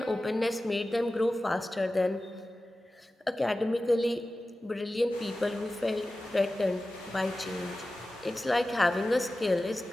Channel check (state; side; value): normal; both; correlation 0.95